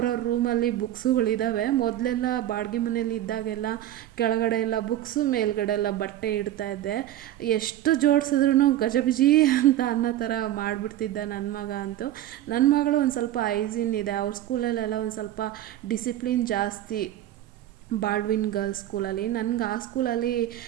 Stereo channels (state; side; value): quieter; left; 12.9 dB